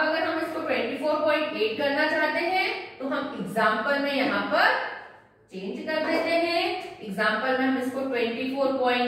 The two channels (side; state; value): both; identical; correlation 1.00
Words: हम इसको 24.8 करना चाहते हैं तो हम एग्जाम्पल में यहाँ पर चेंज कर देते हैं। एग्जाम्पल में हम इसको